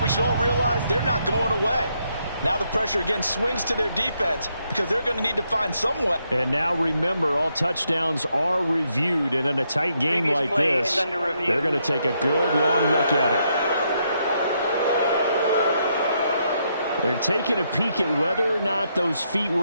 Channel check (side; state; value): both; inverted; correlation -0.77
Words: we should all realize they're not going away. Now the pressure again swings to their defense because they're going to need to find some way. And now remember, all touchdowns are reviewed, and in a tight game like this, they're going to take a good long look at it. They're taking a peek at whether or not those feet